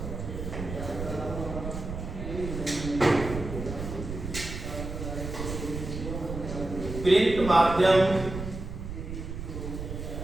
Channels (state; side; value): noise; right; rumble, 7 dB below the sound